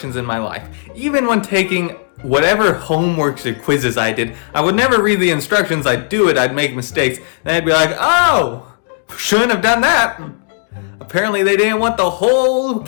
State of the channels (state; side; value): silent; right; digital silence